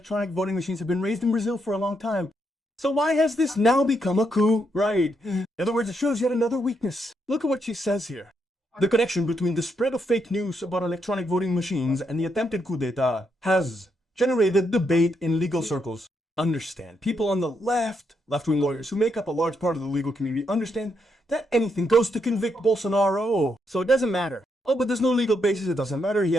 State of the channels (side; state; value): both; normal; correlation 0.79